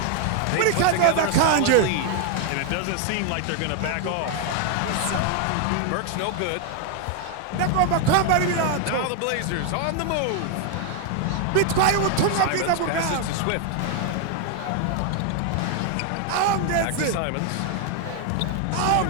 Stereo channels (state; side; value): different; both; correlation 0.00